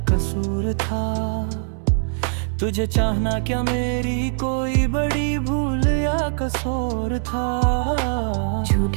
कसूर था, तुझे चाहना क्या मेरी कोई बड़ी भूल या कसूर था।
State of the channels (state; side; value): silent; left; digital silence